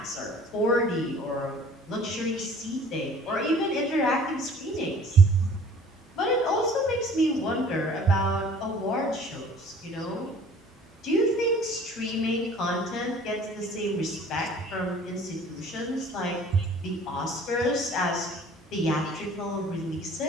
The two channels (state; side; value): normal; both; correlation 0.51